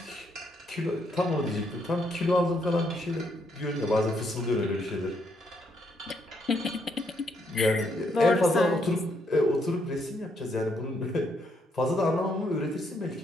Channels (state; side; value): normal; both; correlation 0.74